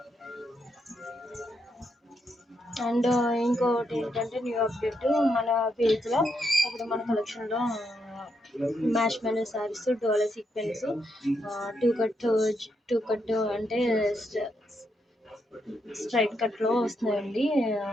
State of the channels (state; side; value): normal; both; correlation 0.80